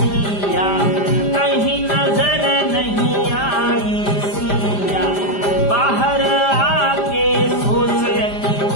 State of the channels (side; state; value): right; late; 5.0 ms